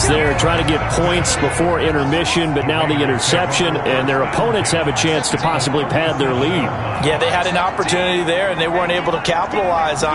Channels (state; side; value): identical; both; correlation 1.00